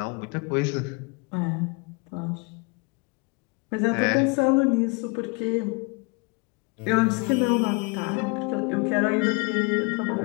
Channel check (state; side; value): quieter; right; 30.1 dB